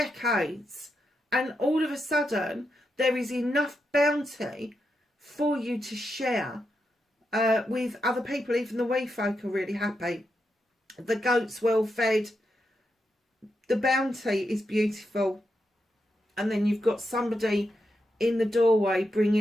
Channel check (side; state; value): both; normal; correlation 0.85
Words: and all of a sudden, there is enough bounty for you to share with other people. Even the wee folk are really happy. The goat's well fed. The bounty is beautiful. And then you've got somebody in the doorway